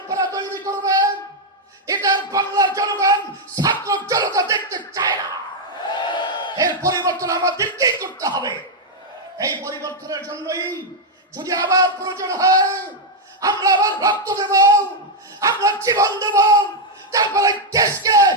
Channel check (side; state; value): both; normal; correlation 0.00